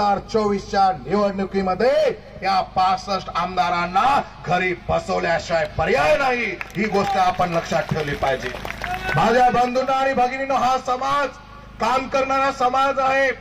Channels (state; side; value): identical; both; correlation 1.00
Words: निवडणुकीमध्ये या 65 आमदारांना घरी बसवल्याशिवाय पर्याय नाही ही गोष्ट आपण लक्षात ठेवली पाहिजे माझ्या बंधूंना आणि भगिनींनो हा समाज काम करणारा समाज आहे